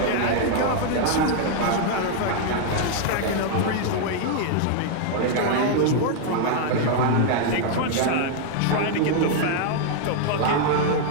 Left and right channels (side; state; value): both; different; correlation 0.00